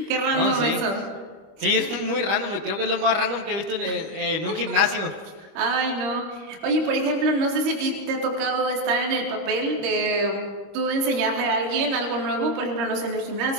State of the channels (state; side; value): late; left; 25 ms